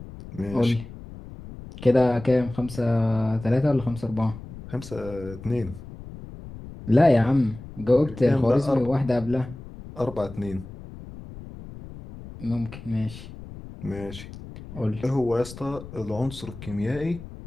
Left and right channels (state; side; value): noise; left; rumble, 14 dB below the sound